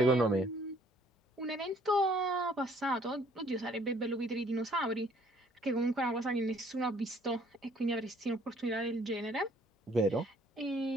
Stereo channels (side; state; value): both; normal; correlation 0.61